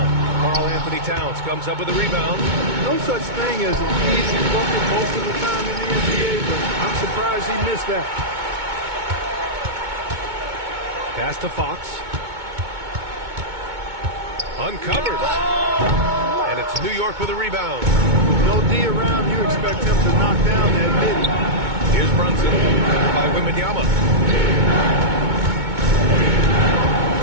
Karl Anthony Towns comes up with a rebound. No such thing as an easy bucket most of the time in the NBA, but I'm surprised he missed that. Pass to Fox. Uncovered. And it's New York with a rebound. No D around, you expect him to knock down that mid. Here's Brunson by Wembanyama.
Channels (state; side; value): late; left; 2.2 ms